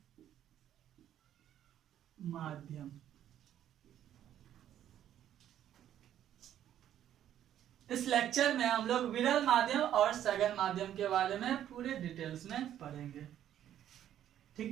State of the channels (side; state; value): left; quieter; 11.0 dB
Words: माध्यम। इस लेक्चर में हम लोग विरल माध्यम और सघन माध्यम के बारे में पूरे डिटेल्स में पढ़ेंगे।